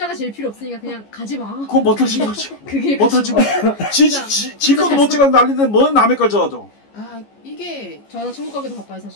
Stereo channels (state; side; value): late; right; 14 ms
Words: 제일 필요 없으니까 그냥 가지 마. 그건 못하지 거지. 그게 못하지 뭐. 지 것도 못 찍어서 난리인데 뭔 남의 걸 적어도. 아 이게 저는 천국 가기도 바빠요